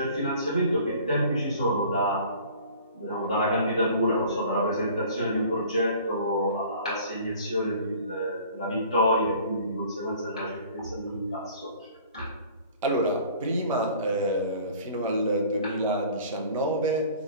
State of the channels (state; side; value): inverted; both; correlation -0.48